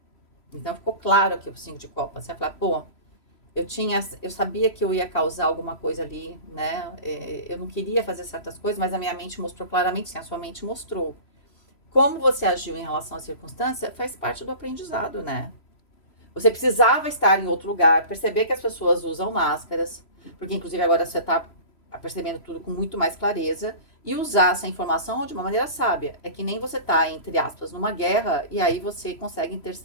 Então, ficou claro aqui o 5 de copas. Você vai falar, pô, eu sabia que eu ia causar alguma coisa ali, né? Eu não queria fazer certas coisas, mas a minha mente mostrou claramente, sim, a sua mente mostrou. Como você agiu em relação à circunstância faz parte do aprendizado, né? Você precisava estar em outro lugar, perceber que as pessoas usam máscaras, porque inclusive agora você está percebendo tudo com muito mais clareza, e usar essa informação de uma maneira sábia. É que nem você tá, entre aspas, numa guerra, e aí você consegue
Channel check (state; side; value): late; right; 3.0 ms